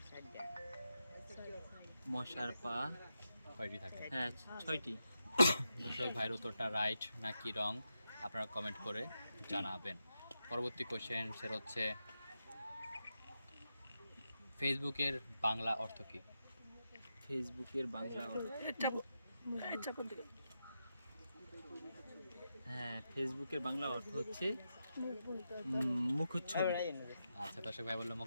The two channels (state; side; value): inverted; both; correlation -0.87